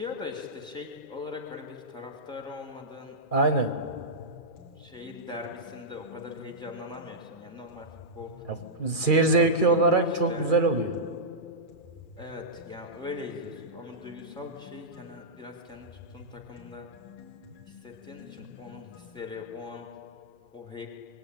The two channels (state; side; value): late; right; 2.4 ms